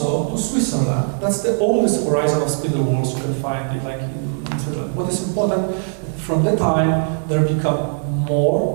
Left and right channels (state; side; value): silent; left; 56 dB below the other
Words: to Switzerland. That's the oldest horizon of spindle wheels you can find like in Switzerland. What is important, from that time, they become